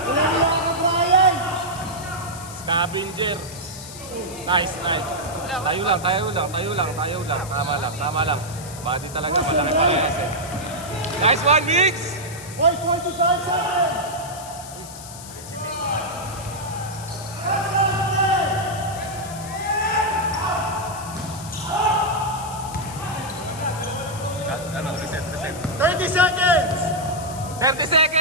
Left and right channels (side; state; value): left; noise; hiss, 14 dB below the sound